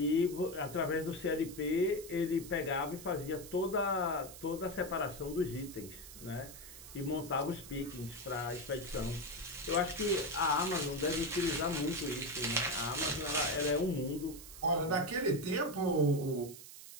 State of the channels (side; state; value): right; noise; hiss, 14 dB below the sound